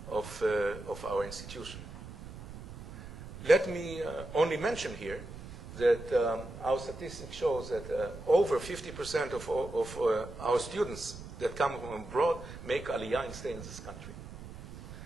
of our institution. Let me only mention here that our statistics shows that over 50% of our students that come from abroad make Aliyah and stay in this country.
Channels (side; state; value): right; noise; rumble, 13 dB below the sound